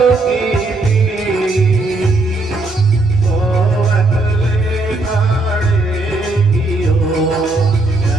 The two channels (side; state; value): left; quieter; 3.0 dB